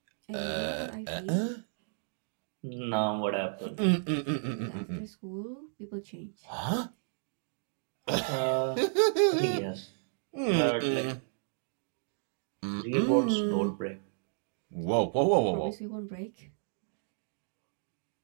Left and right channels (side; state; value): left; silent; digital silence